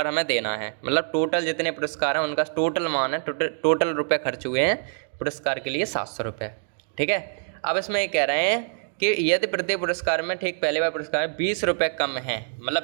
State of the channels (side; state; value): left; silent; digital silence